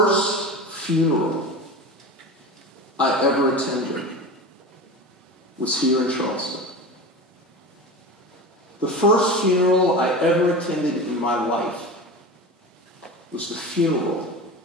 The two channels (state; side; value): normal; both; correlation 0.29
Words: funeral I ever attended was here in Charleston. The first funeral I ever attended in my life was the funeral